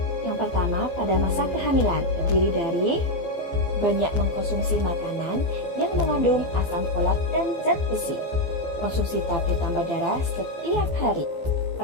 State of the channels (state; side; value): late; right; 15 ms